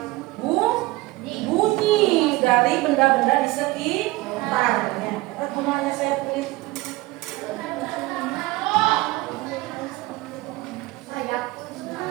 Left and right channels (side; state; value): left; quieter; 20.3 dB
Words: Bunyi dari benda-benda di sekitarnya. Gunanya saya kulit.